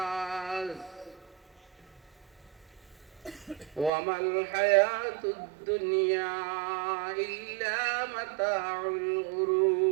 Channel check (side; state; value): left; drops out; at 3.9 s